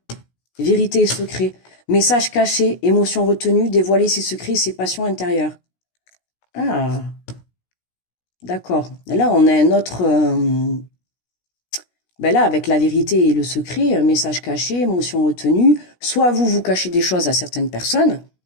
vérité et secret. Message caché, émotion retenue, dévoiler ses secrets et ses passions intérieures. Ah, d'accord. Là, on a un autre... Ben là, avec la vérité et le secret, message caché, émotion retenue, soit vous cachez des choses à certaines personnes,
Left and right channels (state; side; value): late; right; 16 ms